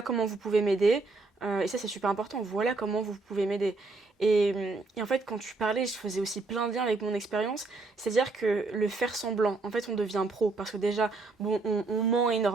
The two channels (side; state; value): left; quieter; 3.6 dB